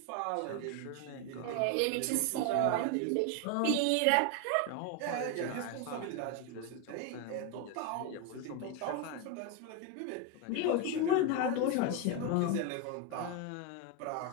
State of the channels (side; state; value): both; different; correlation 0.02